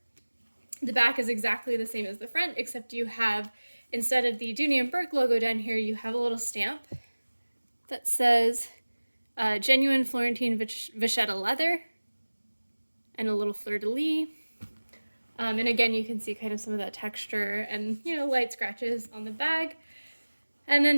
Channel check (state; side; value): inverted; both; correlation -1.00